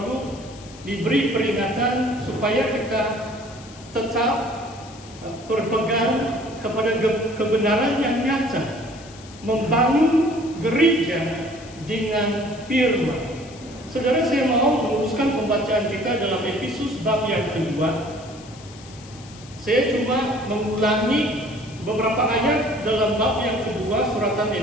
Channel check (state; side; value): noise; left; hiss, 20 dB below the sound